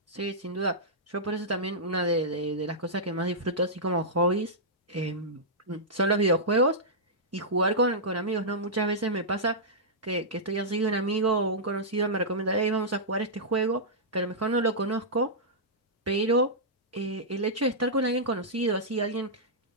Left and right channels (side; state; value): both; normal; correlation -0.11